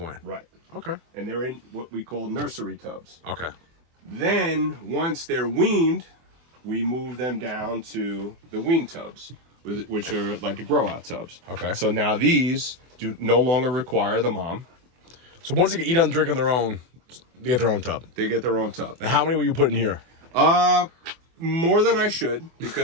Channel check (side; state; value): left; late; 24 ms